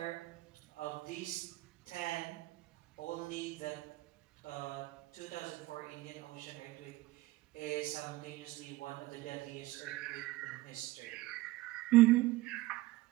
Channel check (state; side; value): quieter; left; 18.2 dB